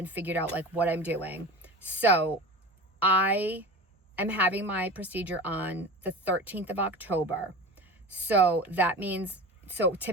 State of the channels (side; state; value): both; normal; correlation 0.32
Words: figured out like what I'm doing. So I am having my procedure on the 13th of October. So that means, so